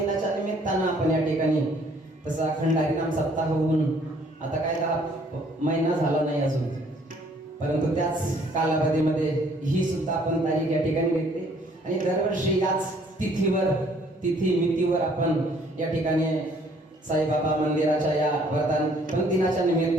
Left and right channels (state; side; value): normal; both; correlation 0.61